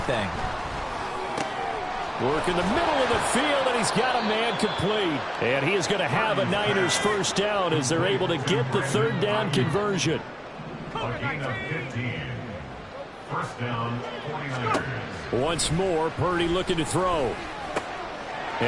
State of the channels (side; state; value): both; identical; correlation 1.00